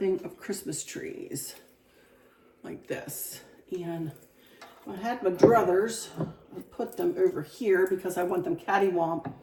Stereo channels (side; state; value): both; identical; correlation 1.00